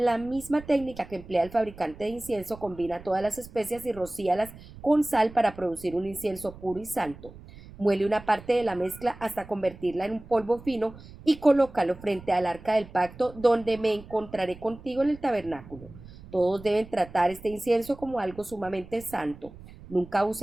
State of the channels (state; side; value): noise; right; rumble, 18 dB below the sound